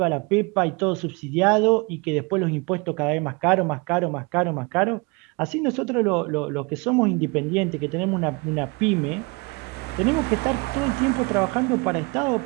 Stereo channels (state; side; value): quieter; left; 28.1 dB